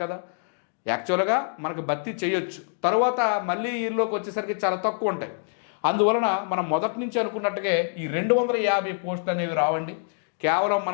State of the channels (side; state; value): right; silent; digital silence